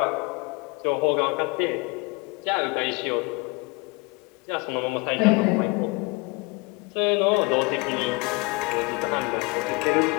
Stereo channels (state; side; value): quieter; right; 26.9 dB